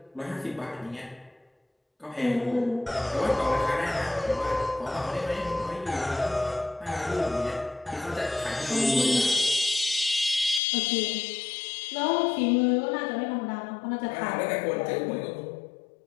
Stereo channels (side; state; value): right; drops out; at 10.6 s